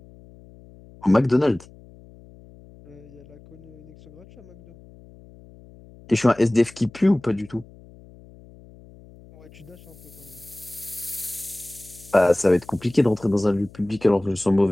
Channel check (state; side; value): noise; left; hum, 22 dB below the sound